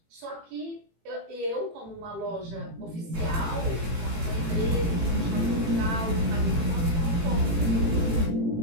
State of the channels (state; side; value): late; left; 18 ms